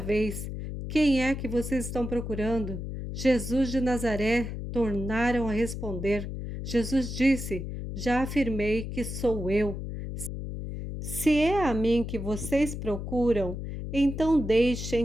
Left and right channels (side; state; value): left; noise; hum, 6 dB below the sound